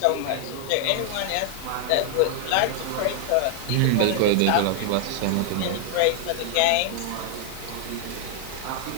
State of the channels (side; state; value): both; different; correlation 0.00